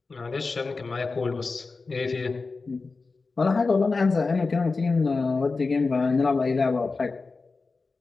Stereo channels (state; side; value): quieter; right; 4.0 dB